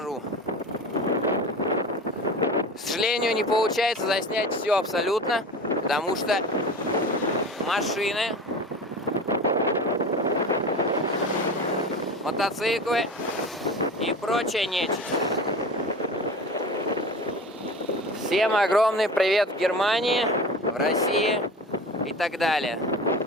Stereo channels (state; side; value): normal; both; correlation 0.33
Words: К сожалению, не получается заснять все абсолютно, потому что машины, мотоциклы и прочая нечисть. Всем огромный привет в Германии, в России и так далее.